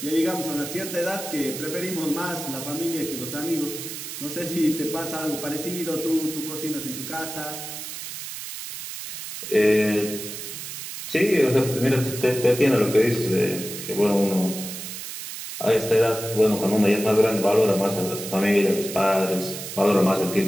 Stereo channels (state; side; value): noise; right; hiss, 8 dB below the sound